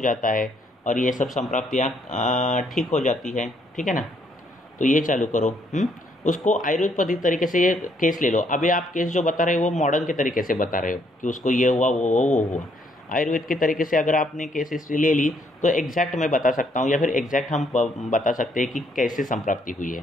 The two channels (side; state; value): both; normal; correlation 0.70